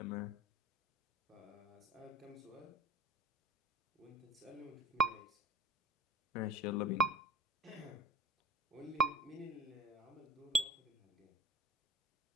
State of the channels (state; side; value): normal; both; correlation 0.41